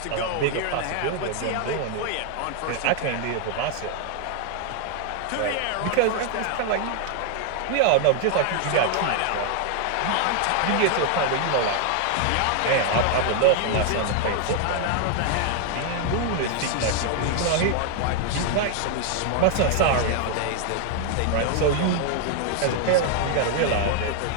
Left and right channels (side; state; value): both; different; correlation 0.00